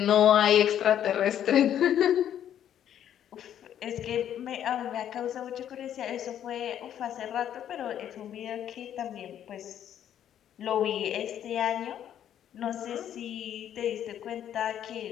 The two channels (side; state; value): right; quieter; 10.3 dB